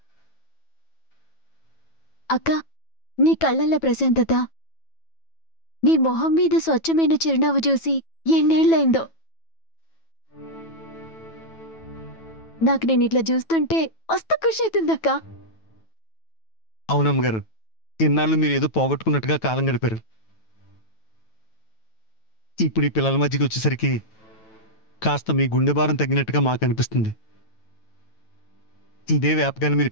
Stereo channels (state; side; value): late; right; 9.1 ms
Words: అక్క, నీ కళ్ళల్లో ప్రశాంతత, నీ మొహం మీద స్వచ్ఛమైన చిరునవ్వు చూసి ఎన్నేళ్లైందో. నాకు నేను ఇట్లా చూస్తుంటే మస్తు ఖుషి అవుతుందక్క. అవునమ్మ గారు, ఇన్నాళ్ళు మీరు ఏదో పోగొట్టుకున్నట్టుగా కాలం గడిపారు. ఇప్పుడు ఈ పిల్లల మధ్యకి వచ్చేసరికి కాస్త మీ గుండె భారం తగ్గినట్టుగా మాకు అనిపిస్తుంది. ఇదే వ్యాపకాన్ని మీరు